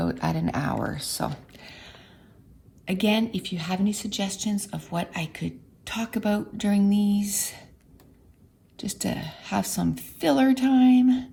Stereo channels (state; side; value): identical; both; correlation 1.00